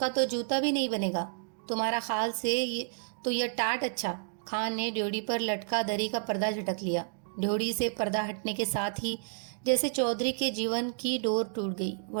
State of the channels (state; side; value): silent; left; digital silence